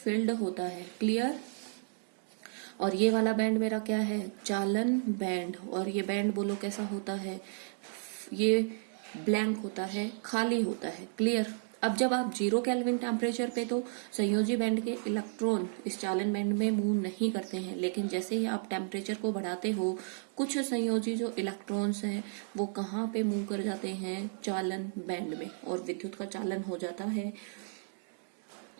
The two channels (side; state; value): left; silent; digital silence